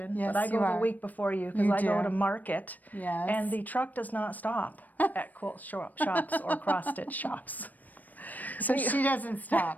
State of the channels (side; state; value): right; late; 0.082 ms